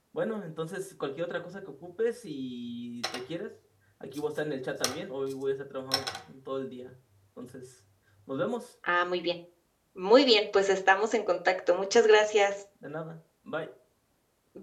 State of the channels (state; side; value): identical; both; correlation 1.00